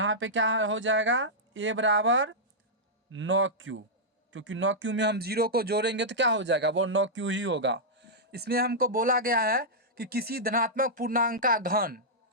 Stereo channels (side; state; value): both; normal; correlation -0.09